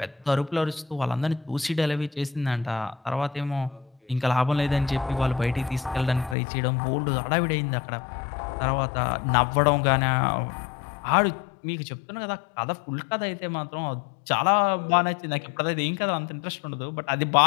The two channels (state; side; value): drops out; right; at 6.4 s